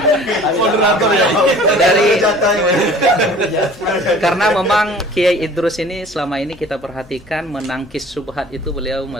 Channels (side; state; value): both; normal; correlation 0.48